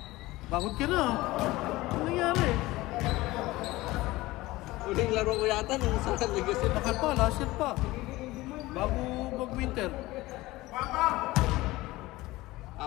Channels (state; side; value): quieter; right; 19.1 dB